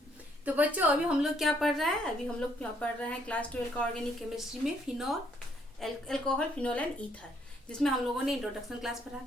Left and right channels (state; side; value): normal; both; correlation 0.68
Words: तो बच्चों अभी हम लोग क्या पढ़ रहे हैं? अभी हम लोग पढ़ रहे हैं क्लास 12 का ऑर्गेनिक केमिस्ट्री में phenol alcohol phenol and ether, जिसमें हम लोगों ने इंट्रोडक्शन क्लास पढ़ा,